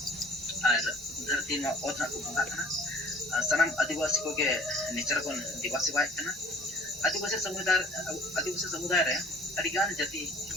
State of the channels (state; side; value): normal; both; correlation 0.51